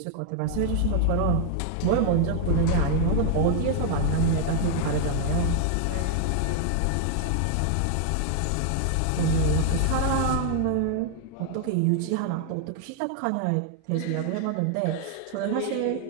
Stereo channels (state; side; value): different; both; correlation 0.00